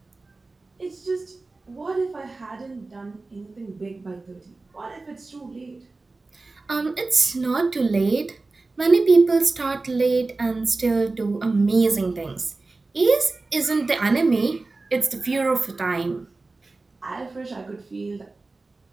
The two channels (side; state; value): left; quieter; 3.5 dB